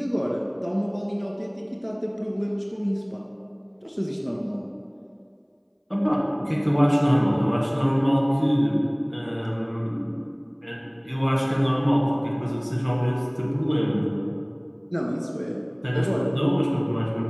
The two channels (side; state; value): both; identical; correlation 1.00